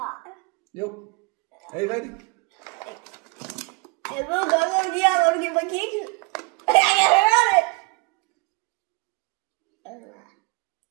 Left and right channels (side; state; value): left; quieter; 28.1 dB